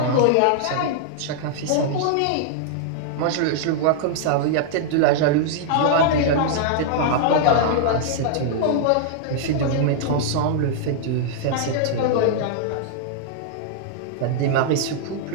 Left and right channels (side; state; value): both; different; correlation -0.01